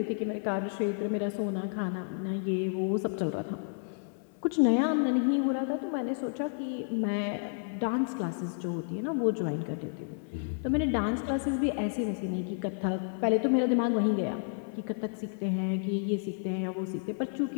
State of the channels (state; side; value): silent; right; 57 dB below the other